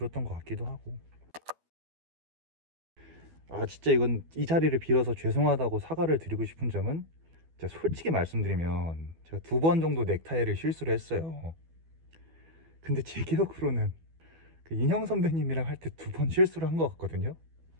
것 같기도 하고. 진짜 이건 이 자리를 빌어서 죄송하다고 사과를 드리고 싶은 점은, 제가 솔직히 말씀드리면 제가 2번 정도 넥타이를 실수를 했어요. 근데 제 기억으로는 그 인형 선배님이랑 할 때 2번 실수를 한 것 같거든요.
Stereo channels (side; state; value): left; late; 12 ms